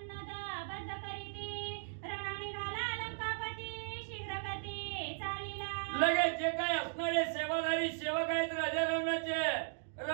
लगेच जे काही असणारे सेवाधारी सेवक आहेत राजा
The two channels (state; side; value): silent; left; digital silence